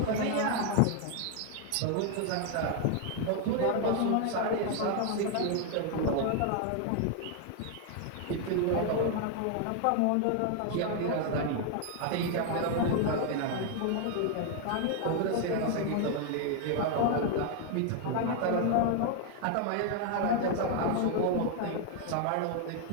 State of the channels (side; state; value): both; different; correlation 0.00